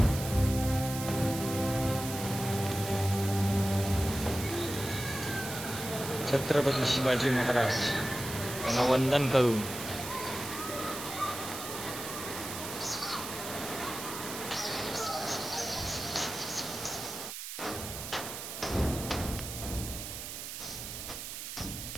छत्रपती शिवाजी महाराज यांना वंदन करून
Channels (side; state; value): right; noise; hiss, 8 dB below the sound